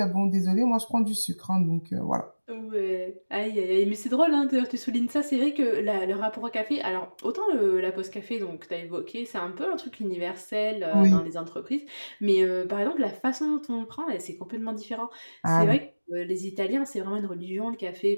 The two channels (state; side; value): inverted; both; correlation -1.00